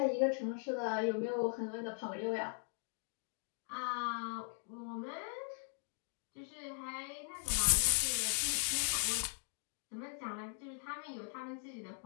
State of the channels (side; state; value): right; silent; 52 dB below the other